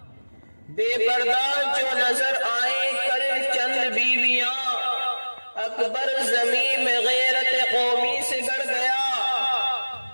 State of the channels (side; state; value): both; inverted; correlation -1.00